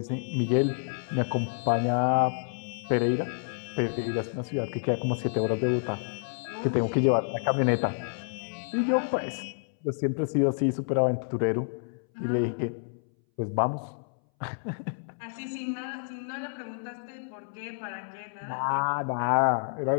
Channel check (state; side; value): silent; right; 59 dB below the other